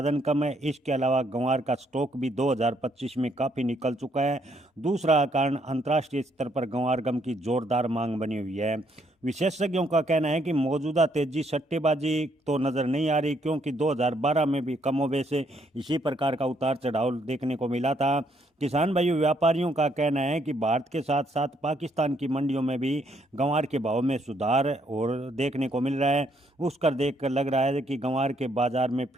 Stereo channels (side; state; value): both; normal; correlation 0.71